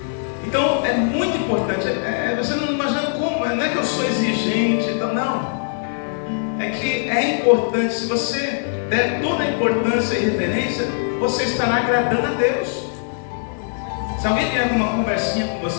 Então é muito importante. Você não imagina como, não é que eu sou exigente, não. É que é importante. Se você der toda a importância e reverência, você estará agradando a Deus. Se alguém vier com uma conversinha com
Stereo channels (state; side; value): silent; right; digital silence